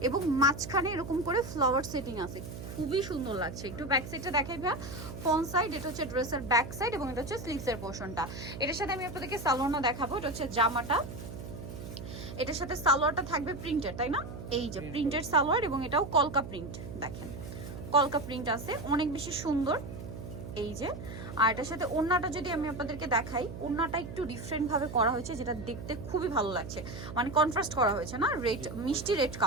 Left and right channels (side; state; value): right; noise; hum, 10 dB below the sound